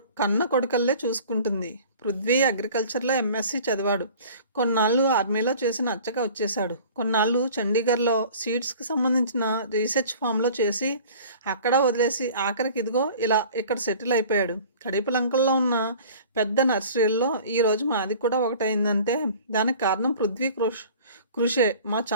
కన్న కొడుకల్లే చూసుకుంటుంది. పృథ్వీ అగ్రికల్చర్లో ఎంఎస్సి చదివాడు. కొన్నాళ్ళు ఆర్మీలో చేసి నచ్చక వచ్చేశాడు. కొన్నాళ్ళు చండీగఢ్లో సీడ్స్కి సంబంధించిన రీసెర్చ్ ఫామ్లో చేసి అక్కడ వదిలేసి ఆఖరికి ఇదిగో ఇలా ఇక్కడ సెటిల్ అయిపోయాడు. కడిపలంకల్లో ఉన్న పెద్ద నర్సరీల్లో ఈరోజు మాది కూడా ఒకటైందంటే దానికి కారణం పృథ్వీ కృషే. మా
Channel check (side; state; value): both; inverted; correlation -0.45